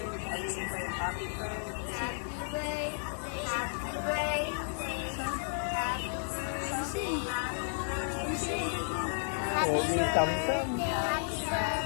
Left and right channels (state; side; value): silent; right; digital silence